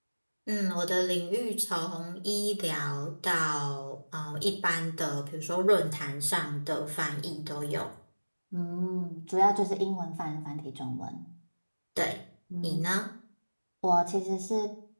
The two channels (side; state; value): both; inverted; correlation -1.00